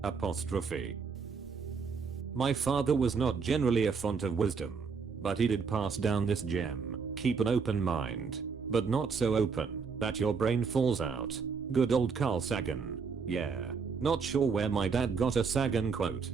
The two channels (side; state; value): left; quieter; 5.4 dB